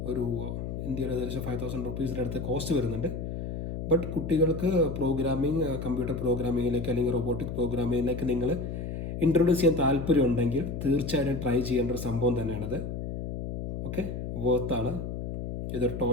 ഒരു ഇന്ത്യയുടെ ഏകദേശം 5,000 റുപ്പീസിൻ്റെ അടുത്ത് കോസ്റ്റ് വരുന്നുണ്ട്. ബട്ട് കുട്ടികൾക്ക് പ്രോഗ്രാമിംഗ്, കമ്പ്യൂട്ടർ പ്രോഗ്രാമിങ്ങിലേക്ക് അല്ലെങ്കിൽ റോബോട്ടിക് പ്രോഗ്രാമിങ്ങിലേക്ക് നിങ്ങൾ ഇൻട്രൊഡ്യൂസ് ചെയ്യാൻ താല്പര്യമുണ്ടെങ്കിൽ തീർച്ചയായിട്ടും ട്രൈ ചെയ്യേണ്ട ഒരു സംഭവം തന്നെയാണത്. ഓക്കെ, വർത്താണ്. ഇതൊരു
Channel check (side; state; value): left; noise; hum, 5 dB below the sound